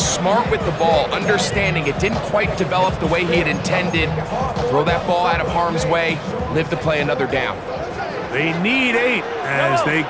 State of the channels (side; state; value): both; identical; correlation 1.00